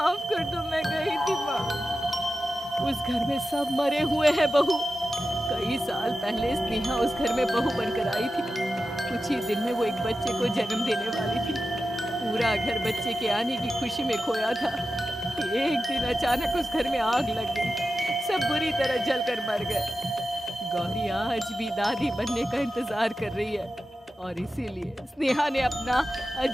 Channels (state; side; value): normal; both; correlation 0.93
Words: कर दो, मैं गई थी माँ। उस घर में सब मरे हुए हैं बहू। कई साल पहले स्नेहा उस घर में बहू बनकर आई थी। कुछ ही दिन में वो एक बच्चे को जन्म देने वाली थी। पूरा घर बच्चे के आने की खुशी में खोया था। एक दिन अचानक उस घर में आग लग गई। सब बुरी तरह जलकर मर गए। गौरी आज भी दादी बनने का इंतजार कर रही है और इसीलिए स्नेहा ने अपना